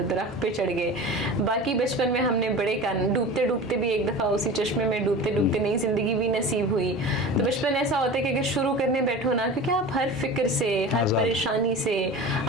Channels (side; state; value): both; normal; correlation 0.34